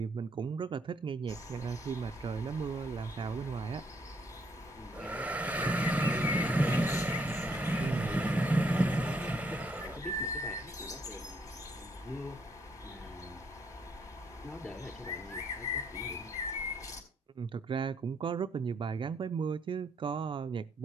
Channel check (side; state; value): both; normal; correlation 0.71